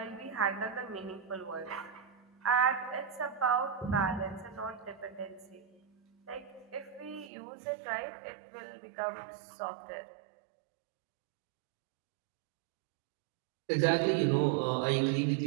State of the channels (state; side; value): drops out; left; at 7.3 s